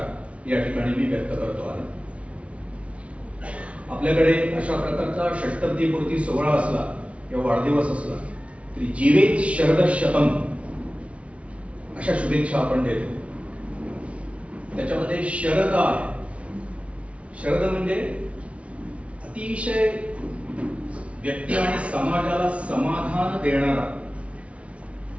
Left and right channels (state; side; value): late; left; 0.063 ms